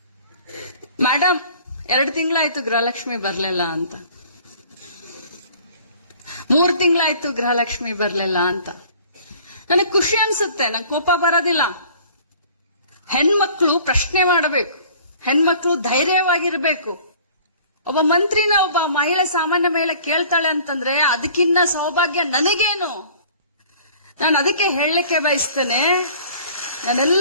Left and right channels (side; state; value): both; inverted; correlation -0.50